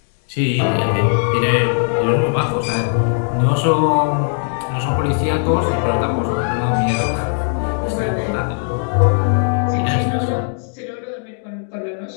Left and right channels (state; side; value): silent; right; 60 dB below the other